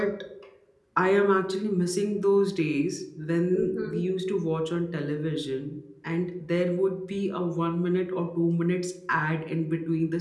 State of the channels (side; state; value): both; identical; correlation 1.00